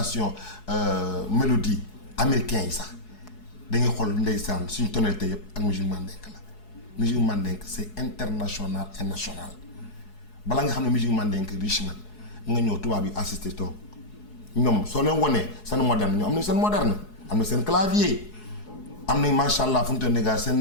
mélodie américain yi sax da ngay xool ndeysaan suñu tonalité yëpp ak musique mandingue la. musique mandingue c'est international et national balaa nga xam ne musique mandingue riche na nga ñëw tubaab yi assisté toog ñoom soo leen wonee seen moderne ñoom am nañ seen moderne am na seen clavier am nañ macha allah fu mu toll nii gars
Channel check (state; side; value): late; right; 4.7 ms